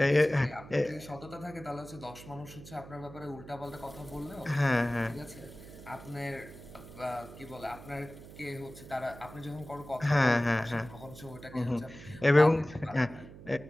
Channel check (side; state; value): right; noise; hum, 16 dB below the sound